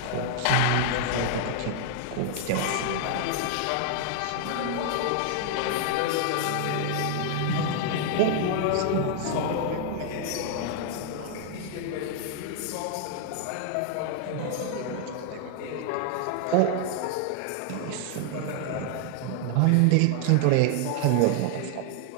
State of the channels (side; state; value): both; different; correlation 0.00